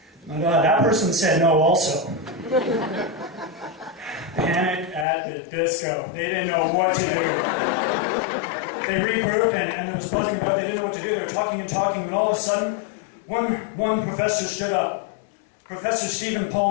And that person said no also. Panic at the disco. They didn't know what to do. They regrouped and there was buzzing about. They didn't know what to do. They were talking and talking, and all of a sudden, one professor stood up. Professor Stephen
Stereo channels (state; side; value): drops out; right; at 5.1 s